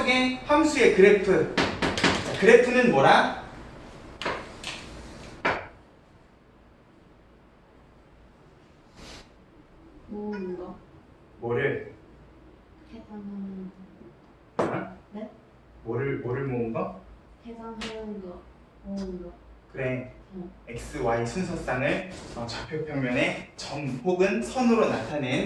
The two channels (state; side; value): identical; both; correlation 1.00